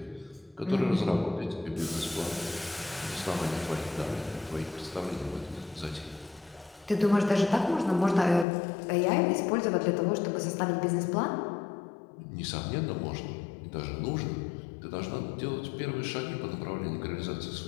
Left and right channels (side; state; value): right; drops out; at 8.5 s